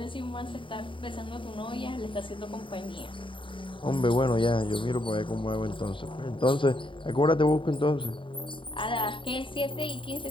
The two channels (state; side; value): late; right; 0.25 ms